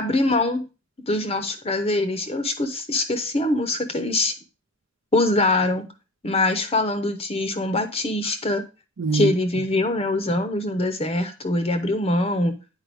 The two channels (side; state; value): both; normal; correlation 0.41